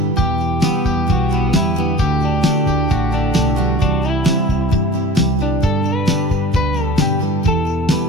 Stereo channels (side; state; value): both; normal; correlation 0.42